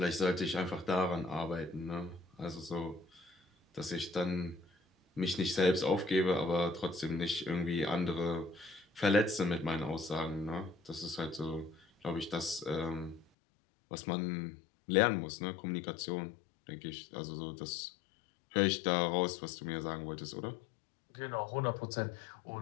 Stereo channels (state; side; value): drops out; right; at 13.2 s